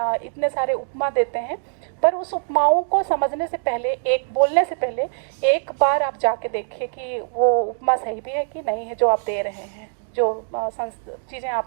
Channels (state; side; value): silent; left; digital silence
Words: इतने सारे उपमा देते हैं, पर उस उपमाओं को समझने से पहले, एक बोलने से पहले एक बार आप जाके देखिए कि वो उपमा सही भी है कि नहीं है जो आप दे रहे हैं, जो चीज़ें